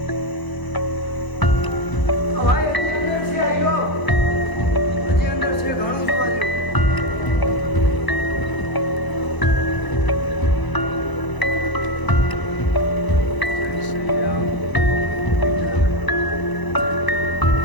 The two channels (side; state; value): right; late; 1.0 ms